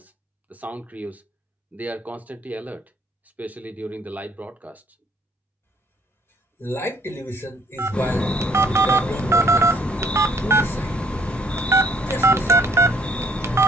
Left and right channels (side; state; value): both; normal; correlation 0.63